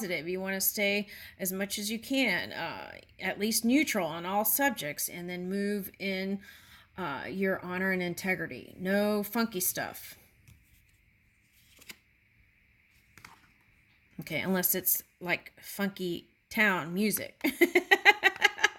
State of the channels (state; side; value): identical; both; correlation 1.00